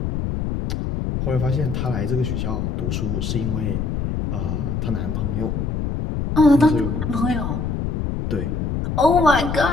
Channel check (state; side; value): noise; left; rumble, 2 dB below the sound